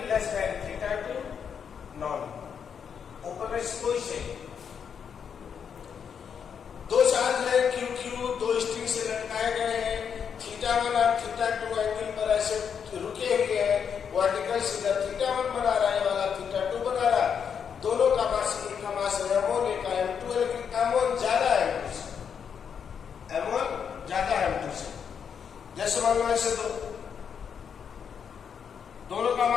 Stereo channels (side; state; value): right; quieter; 7.2 dB